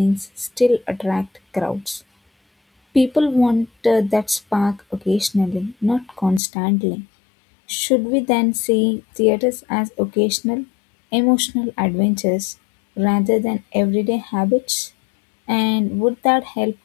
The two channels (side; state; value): right; drops out; at 6.4 s